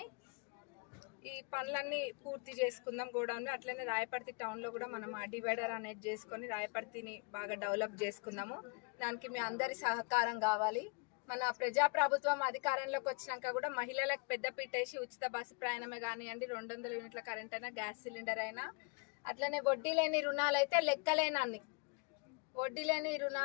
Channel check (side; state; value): right; quieter; 33.7 dB